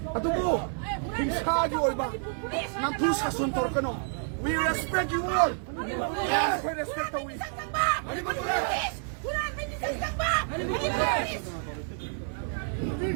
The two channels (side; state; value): left; silent; 59 dB below the other